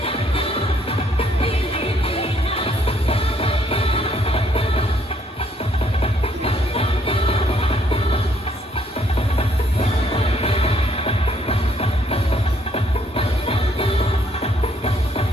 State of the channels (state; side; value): normal; both; correlation 0.68